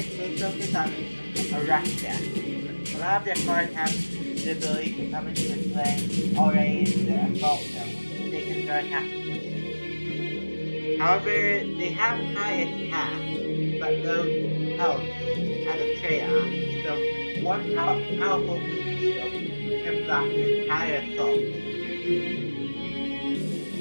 they focus on a rush deck. A lot of their cards have the ability to come into play already in the assault zone, which they can start attacking. However, they have high attack, but low health as a trade-off. So one powerful meat shield can block the entire assault.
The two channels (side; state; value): both; inverted; correlation -1.00